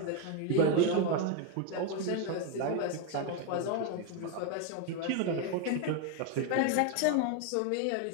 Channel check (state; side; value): different; both; correlation 0.02